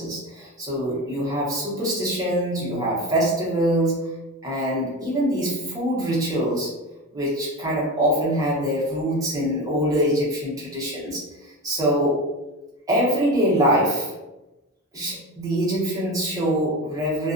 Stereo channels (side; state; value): both; normal; correlation 0.24